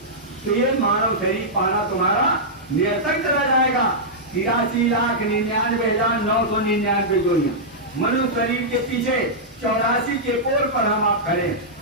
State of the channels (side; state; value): both; normal; correlation -0.10